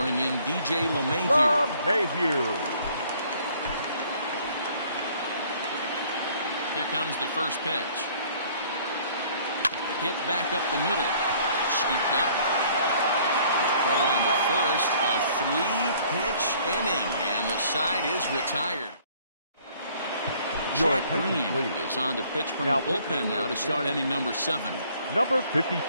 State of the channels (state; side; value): inverted; both; correlation -0.58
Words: bring in DJ LeMahieu. LeMahieu. Here comes the first pitch. Hit back up the middle. Scooped up. Throw on to first. A 3-pitch inning. And the side is retired. Jack Green is on to pitch from the bullpen now to start inning number 7. Number